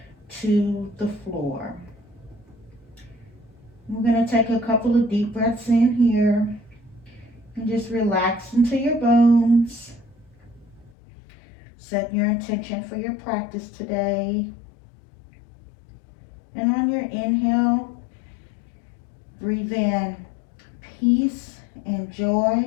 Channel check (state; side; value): drops out; right; at 10.9 s